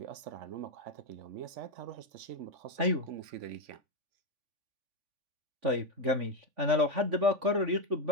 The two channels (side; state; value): left; late; 3.5 ms